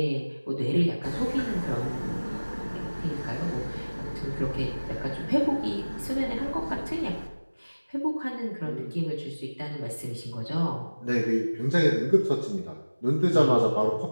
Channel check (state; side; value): inverted; both; correlation -1.00